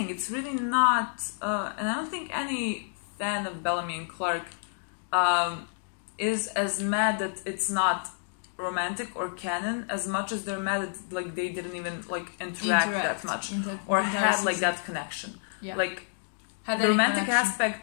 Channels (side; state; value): right; silent; digital silence